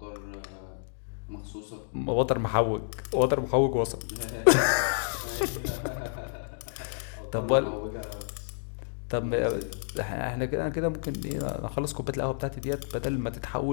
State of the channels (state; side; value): silent; right; digital silence